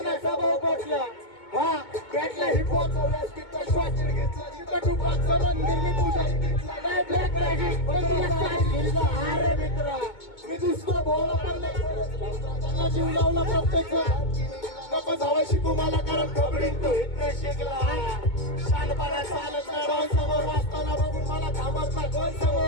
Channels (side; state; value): right; late; 2.2 ms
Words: भाव पटला हा बॅटला हिपहॉप व्यासपीठचा श्वास घेतला जिथं टुपाचं मंदिर मी पूजारी घेतला नाही ब्लॅक मॅजिक अरे मित्रा मी दुसरं भोवला पण त्यांना जीव लावला प्रत्येक नको जावं शिकू मला कारण खबरीन तो इथं शिकला शानपणा चालत नाही डॉन समोर वाचताना बघून मला थांबत नाही दोन